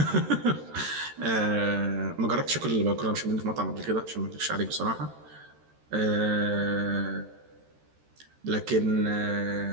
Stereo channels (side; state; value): left; late; 13 ms